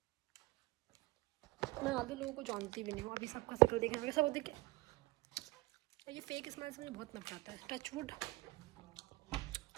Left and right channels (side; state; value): left; quieter; 20.1 dB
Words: ज़्यादा लोगों को जानती भी नहीं हूँ, अभी सबका शक्ल देखने में सब देखे। ये फेक स्माइल से मुझे बहुत नफरत आता है। Touch wood.